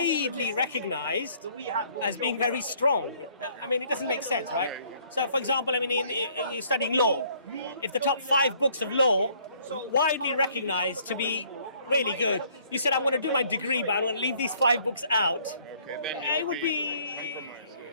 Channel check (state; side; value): inverted; both; correlation -0.62